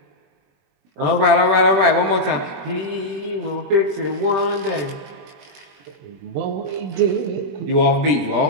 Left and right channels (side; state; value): left; late; 21 ms